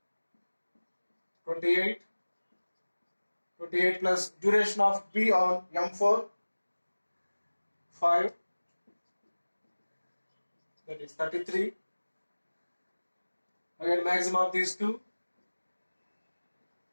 28. 28 plus duration of B on M4, 5. That is 33. Again maximum of these 2.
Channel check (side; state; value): both; inverted; correlation -1.00